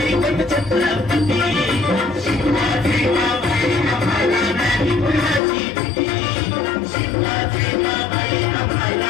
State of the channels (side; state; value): right; drops out; at 5.4 s